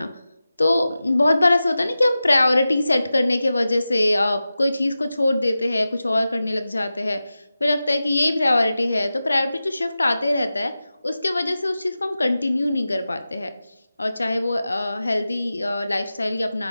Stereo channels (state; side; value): inverted; both; correlation -0.94